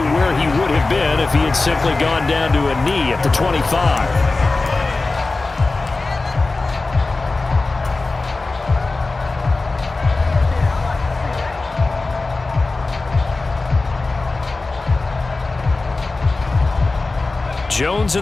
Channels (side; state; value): right; quieter; 3.5 dB